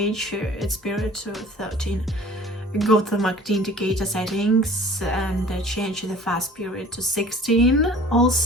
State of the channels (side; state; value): both; normal; correlation 0.47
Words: its period to 13. Go to the MACD indicator settings and change the fast period to 16.